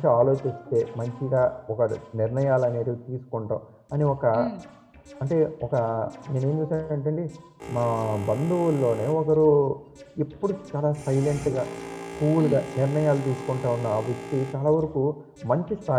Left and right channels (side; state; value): both; identical; correlation 1.00